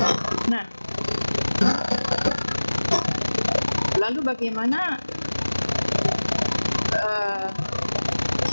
Nah, lalu bagaimana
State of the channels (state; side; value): inverted; both; correlation -1.00